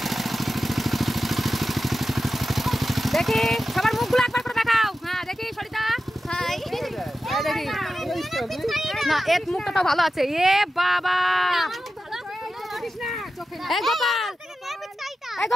দেখি সবার মুখগুলো একবার করে দেখাও হ্যাঁ দেখি সরিতা দেখি না এর মুখটা তো ভালো আছে এ বাবা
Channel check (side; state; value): both; normal; correlation 0.92